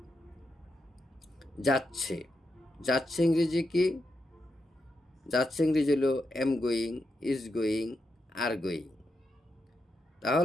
যাচ্ছে। যাচ্ছে ইংরেজি কি? যাচ্ছে ইংরেজি হলো am going, is going, are going.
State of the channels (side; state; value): both; normal; correlation 0.85